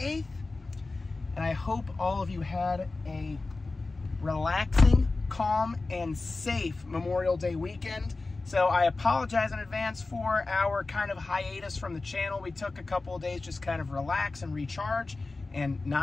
and I hope all of you had a relaxing, calm, and safe Memorial Day weekend. So I apologize in advance for our kind of hiatus from the channel. We took a couple of days just kind of relax and recharge and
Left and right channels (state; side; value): quieter; right; 3.5 dB